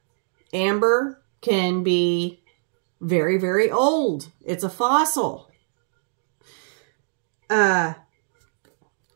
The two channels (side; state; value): left; silent; digital silence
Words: amber can be very, very old. It's a fossil. And